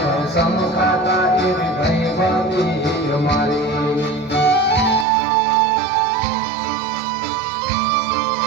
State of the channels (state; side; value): drops out; left; at 5.1 s